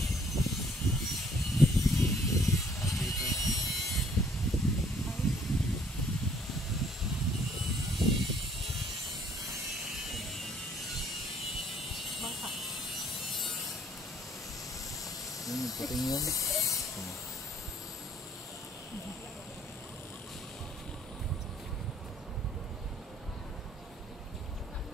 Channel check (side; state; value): both; normal; correlation 0.61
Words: Bangka. Yung puting yun. Yes,